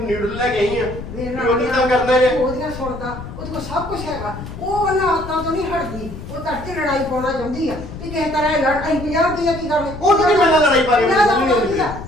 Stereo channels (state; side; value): noise; left; rumble, 11 dB below the sound